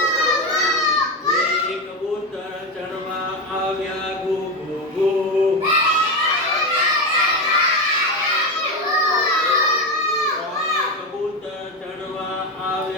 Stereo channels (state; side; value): normal; both; correlation 0.15